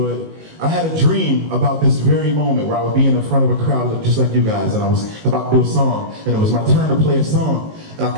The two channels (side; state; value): left; late; 19 ms